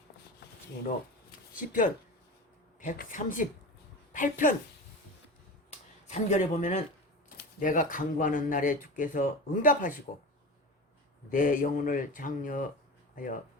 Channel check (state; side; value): normal; both; correlation 0.29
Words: 그리고 시편 138편 3절에 보면은 내가 간구하는 날에 주께서 응답하시고 내 영혼을 장려하여